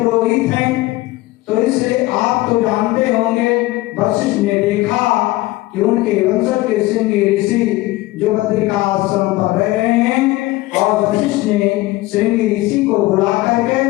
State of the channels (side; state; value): right; quieter; 18.9 dB